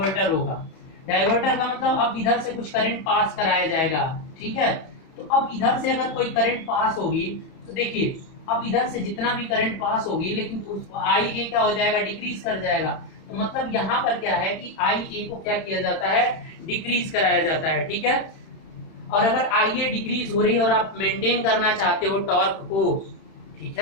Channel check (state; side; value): late; right; 31 ms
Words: होगा, डाइवर्टर का मतलब अब इधर से कुछ करंट पास कराया जाएगा। ठीक है, तो अब इधर से अगर कोई करंट पास होगी तो देखिए अब इधर से जितना भी करंट पास होगी, लेकिन उस आई ए क्या हो जाएगा, डिक्रीज कर जाएगा। तो मतलब यहाँ पर क्या है कि आई ए को क्या किया जाता है, डिक्रीज कराया जाता है। ठीक है, और अगर आई ए डिक्रीज हो रही है और आप मेंटेन करना चाहते हो टॉर्क को, ठीक